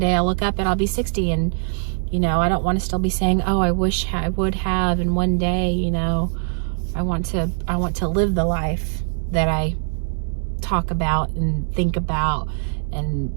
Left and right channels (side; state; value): left; silent; digital silence